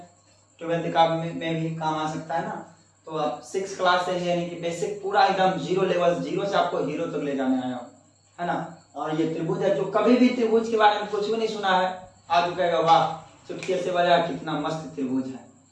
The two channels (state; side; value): identical; both; correlation 1.00